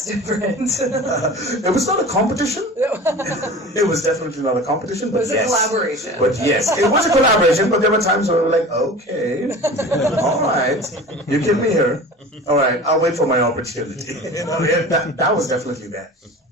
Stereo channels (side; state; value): both; normal; correlation 0.37